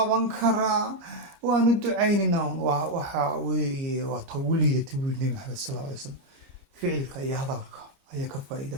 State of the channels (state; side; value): late; left; 30 ms